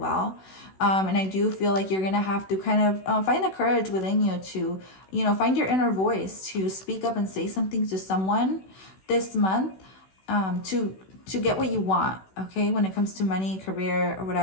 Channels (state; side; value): late; right; 16 ms